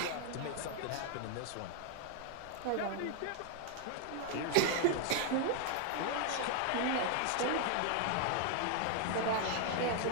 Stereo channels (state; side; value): different; both; correlation 0.00